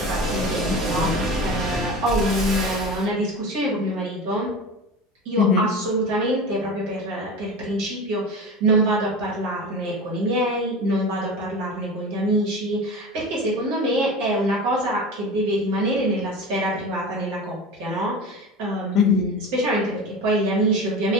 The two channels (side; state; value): both; normal; correlation 0.30